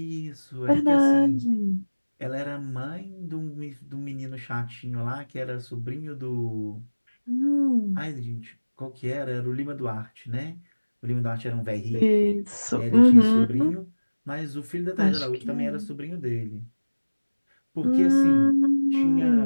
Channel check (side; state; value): both; inverted; correlation -1.00